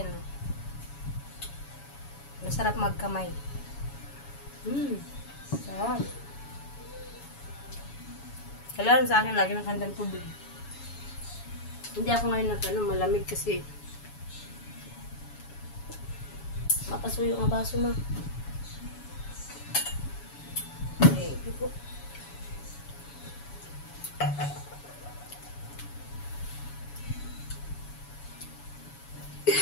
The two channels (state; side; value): late; right; 7.1 ms